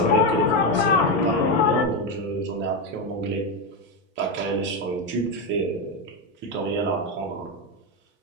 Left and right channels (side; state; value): both; normal; correlation 0.10